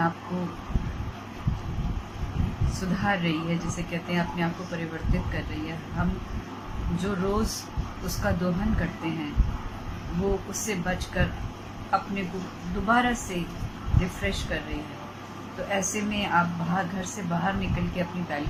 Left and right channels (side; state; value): both; identical; correlation 1.00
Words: आप को सुधार रही है, जिसे कहते हैं अपने आप को परिवर्तित कर रही है। हम जो रोज़ उसका दोहन करते हैं वो उससे बचकर अपने को दोबारा से रिफ़्रेश कर रही है। तो ऐसे में आप घर से बाहर निकल के अपनी